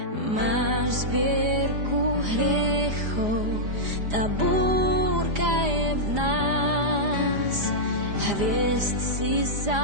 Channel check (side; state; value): left; late; 4.9 ms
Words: Máš zbierku hriechov, tá búrka je v nás. Hviezd si